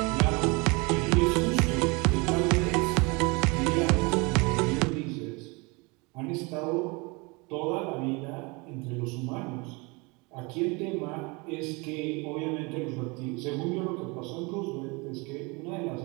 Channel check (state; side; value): quieter; left; 27.8 dB